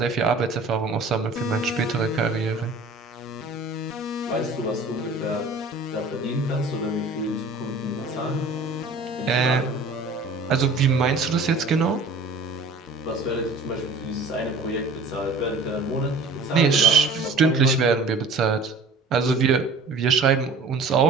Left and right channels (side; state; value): left; quieter; 3.4 dB